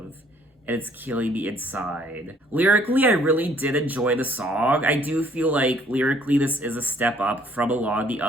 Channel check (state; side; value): normal; both; correlation 0.61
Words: And it's killing me inside. Lyrically, I really did enjoy the song. I do feel like lyrically this is a step up from a lot of the